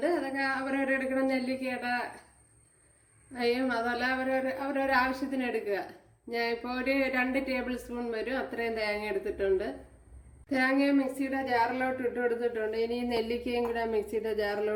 അതൊക്കെ അവരവരെടുക്കണം. നെല്ലിക്കയുടെ അതല്ല അവരവരുടെ ആവശ്യത്തിന് എടുക്കുക. ഞാൻ ഇപ്പോൾ ഒരു 2 ടേബിൾ സ്പൂൺ വരും അത്രയും തേങ്ങ എടുത്തിട്ടുണ്ട്. തേങ്ങ മിക്സിയുടെ ജാറിലോട്ട് ഇട്ട് കൊടുത്തിട്ടുണ്ട്. ഇനി നെല്ലിക്കയും കൂടെ മിക്സിയുടെ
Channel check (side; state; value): both; identical; correlation 1.00